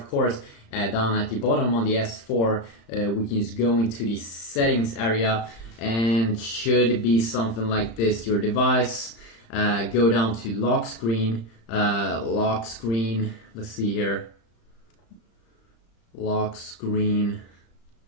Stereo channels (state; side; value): late; right; 35 ms